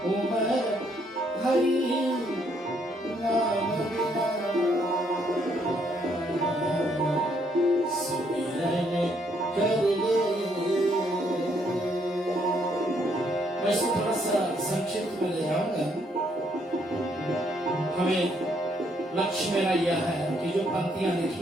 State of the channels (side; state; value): both; normal; correlation 0.71